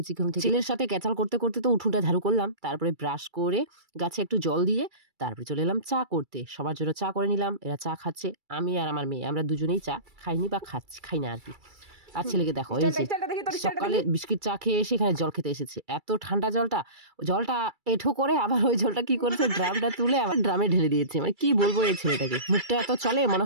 ঘুম থেকে। ছেলের সাথে ক্যাচাল করতে করতে তো উঠোনটা ঝাড়ু করলাম, তারপরে ব্রাশ করে গাছে একটু জল দিয়ে তারপরে চলে এলাম চা করতে। সবার জন্য চা করে নিলাম, এরা চা খাচ্ছে, আমি আর আমার মেয়ে আমরা দুজনেই চা খাইনি বা খাই না আর কি। আর ছেলেকে দেখো এই যে সকালে বিস্কিট চা খেয়ে এসে এখানে জল খেতে এসেছে, এত ঠান্ডা জলটা এঠো করে আবার ওই জলটা কি করেছে, ড্রামটা তুলে আবার ড্রামে ঢেলে দিয়েছে। মানে কি বলবো এই ছেলেটাকে, মুখটা এত চলে মনে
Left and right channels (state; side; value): late; left; 2.3 ms